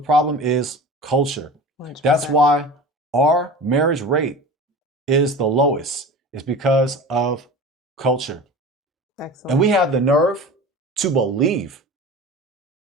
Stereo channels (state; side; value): normal; both; correlation 0.36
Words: is culture. 100%. That's why our marriage rate is the lowest. It's because of culture. Excellent. And we have the nerve to believe